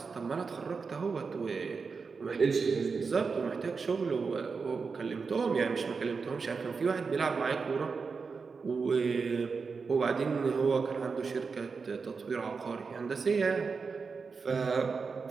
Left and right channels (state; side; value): quieter; left; 5.0 dB